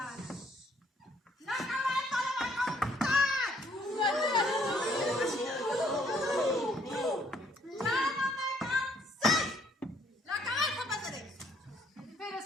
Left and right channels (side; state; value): both; normal; correlation 0.64